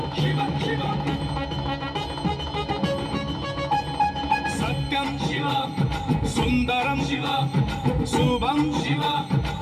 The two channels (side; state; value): both; identical; correlation 1.00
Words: शिव शिव सत्यं शिव सुन्दरं शिव शुभं शिव